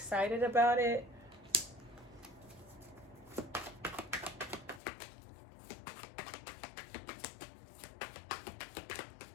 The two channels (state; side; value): drops out; right; at 4.8 s